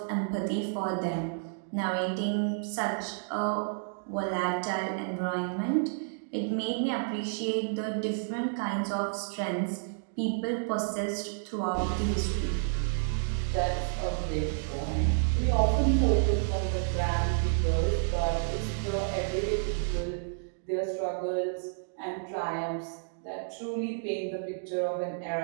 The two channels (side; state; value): left; silent; digital silence